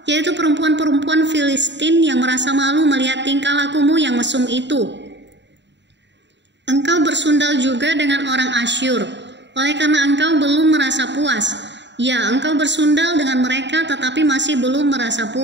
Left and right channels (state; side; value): late; left; 0.52 ms